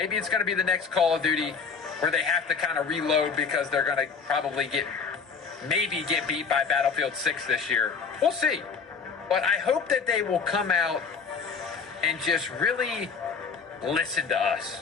it's going to be the next Call of Duty where they have to kind of reload because they're going to probably get beat by Battlefield 6 this year. We'll see. But I hope that they will come out and just really listen to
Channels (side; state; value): right; quieter; 5.6 dB